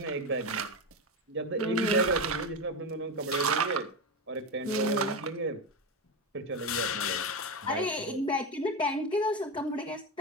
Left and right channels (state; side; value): normal; both; correlation 0.15